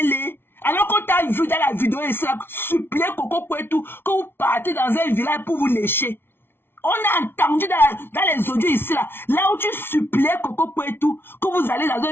laid. Alors qu'on t'a vu dans la vidéo et ça, supplier Coco et tout, que vous partez dans un village pour vous lécher. On a entendu dans les audios ici, là où tu suppliais Coco et tout, que vous allez dans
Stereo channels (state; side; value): late; right; 0.11 ms